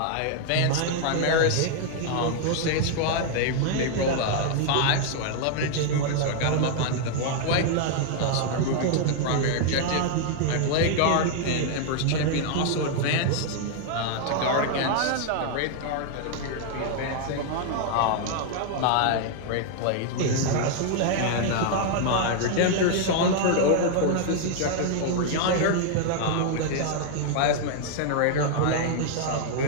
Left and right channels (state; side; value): different; both; correlation 0.00